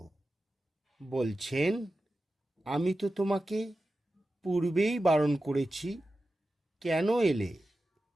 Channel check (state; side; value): normal; both; correlation 0.93